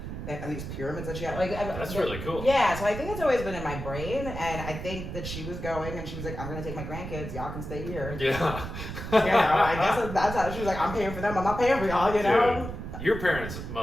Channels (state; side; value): noise; right; rumble, 7 dB below the sound